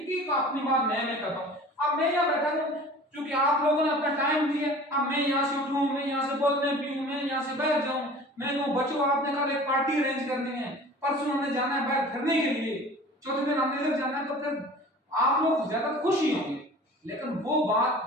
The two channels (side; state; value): both; normal; correlation 0.43